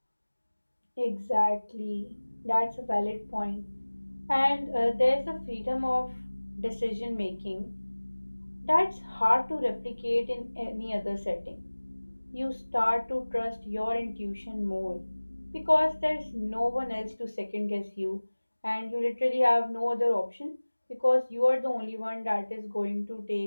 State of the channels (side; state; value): both; inverted; correlation -1.00